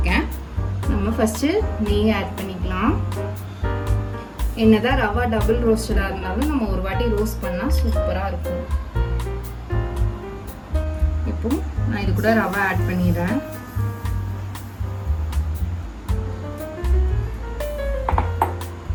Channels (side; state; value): both; identical; correlation 1.00